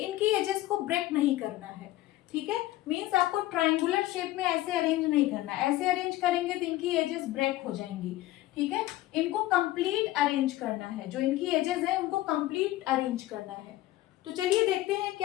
एजेस को ब्रेक नहीं करना है, ठीक है। मींस आपको ट्रायंगुलर शेप में ऐसे अरेंज नहीं करना, ऐसे अरेंज करेंगे तो इनकी एजेस ब्रेक हो जाएंगी, ठीक है। इनको कंप्लीट अरेंज करना है, जो इनकी एजेस है उनको कंप्लीट अरेंज करना है। तो चलिए देखते हैं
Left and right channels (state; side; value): quieter; right; 16.2 dB